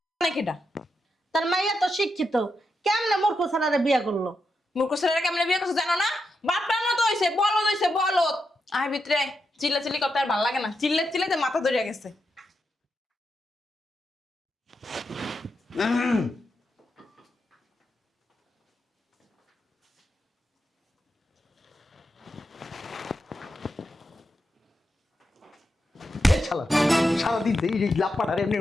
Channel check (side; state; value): both; normal; correlation 0.85